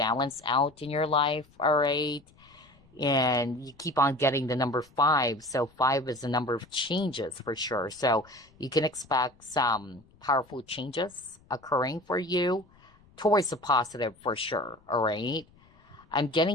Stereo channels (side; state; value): left; noise; rumble, 29 dB below the sound